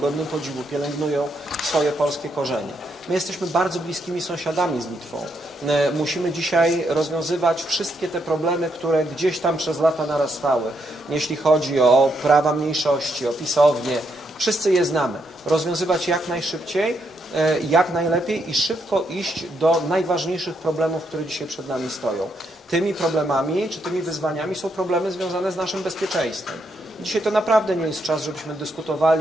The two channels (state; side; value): normal; both; correlation 0.78